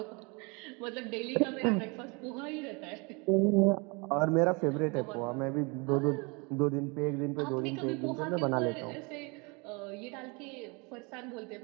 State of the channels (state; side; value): quieter; left; 29.8 dB